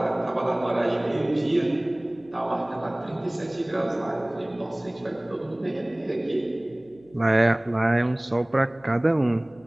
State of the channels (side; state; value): left; noise; hum, 28 dB below the sound